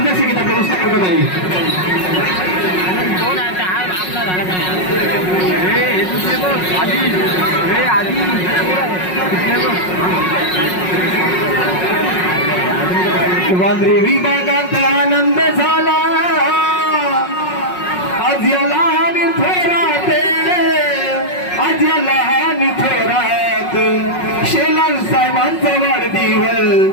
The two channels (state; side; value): late; right; 5.5 ms